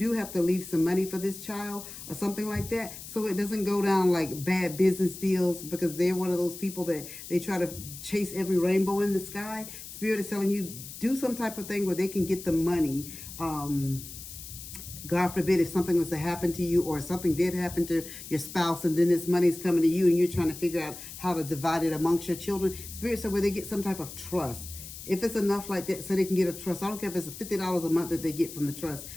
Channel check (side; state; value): left; noise; hiss, 12 dB below the sound